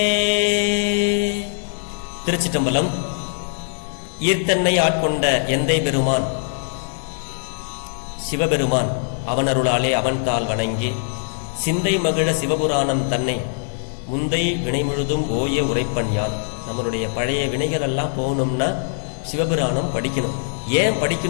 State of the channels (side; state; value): right; silent; digital silence